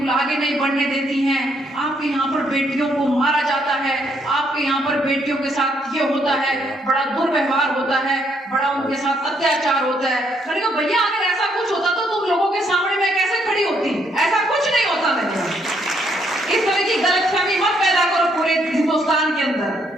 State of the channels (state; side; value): normal; both; correlation 0.72